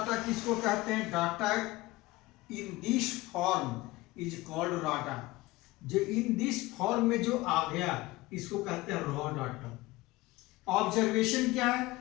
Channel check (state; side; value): quieter; right; 19.9 dB